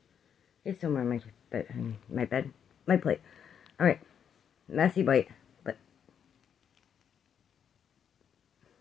It's somewhere on my plate. Alright, messy bite, but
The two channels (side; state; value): right; quieter; 8.1 dB